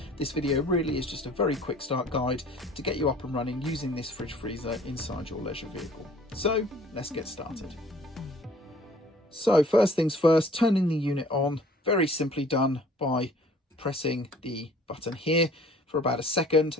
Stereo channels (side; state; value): both; normal; correlation 0.53